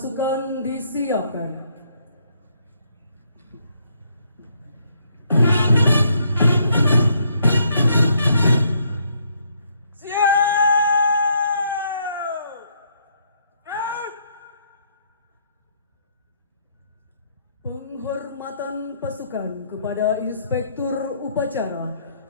disiapkan. Penghormatan pasukan kepada Inspektur Upacara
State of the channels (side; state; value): both; inverted; correlation -0.71